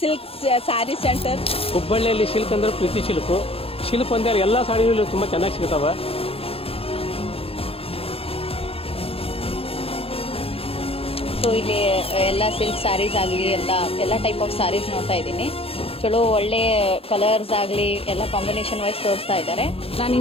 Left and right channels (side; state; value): right; late; 0.28 ms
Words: ಸ್ಯಾರಿ ಸೆಂಟರ್. ಹುಬ್ಬಳ್ಳಿಯಲ್ಲಿ ಸಿಲ್ಕ್ ಅಂದ್ರೆ ಪ್ರೀತಿ ಸಿಲ್ಕು. ಸಿಲ್ಕ್ ಒಂದೇ ಎಲ್ಲ ಸಾಡಿಗಳು ತುಂಬಾ ಚೆನ್ನಾಗಿ ಸಿಗ್ತಾವ. ಸೊ ಇಲ್ಲಿ ಎಲ್ಲ ಸಿಲ್ಕ್ ಸ್ಯಾರೀಸ್ ಆಗಲಿ ಎಲ್ಲ ಟೈಪ್ ಆಫ್ ಸ್ಯಾರೀಸ್ ನೋಡ್ತಾ ಇದ್ದೀನಿ. ಚಲೋ ಒಳ್ಳೆ ಕಲರ್ಸ್ ಆಗಲಿ ಎಲ್ಲ ಕಾಂಬಿನೇಷನ್ ವೈಸ್ ತೋರಿಸ್ತಾ ಇದ್ದಾರೆ. ನಾನು